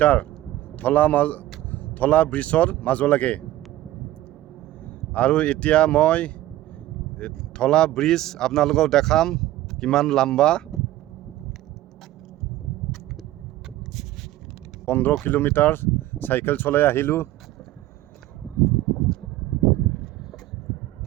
ধলা ব্ৰিজৰ মাজলৈকে। আৰু এতিয়া মই ধলা ব্ৰিজ আপোনালোকক দেখাম কিমান লম্বা। 15 কিলোমিটাৰ চাইকেল চলাই আহিলোঁ।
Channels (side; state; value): left; quieter; 15.1 dB